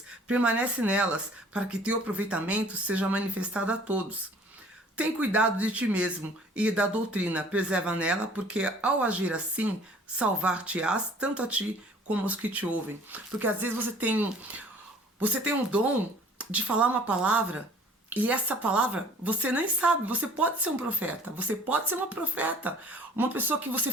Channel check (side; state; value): both; normal; correlation 0.53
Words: permanece nelas, para que teu aproveitamento seja manifestado a todos. Tem cuidado de ti mesmo e da doutrina, preserva nela, porque ao agir assim, salvar-te-ás tanto a ti como aos que te ouvem. Porque às vezes você tem um dom de falar uma palavra, e essa palavra você nem sabe. Você pode ser um profeta, você pode ser uma profeta, uma pessoa que você